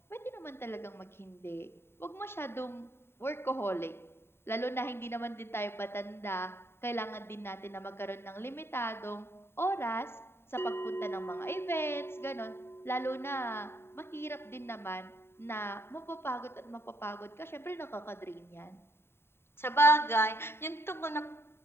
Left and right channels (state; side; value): late; right; 0.11 ms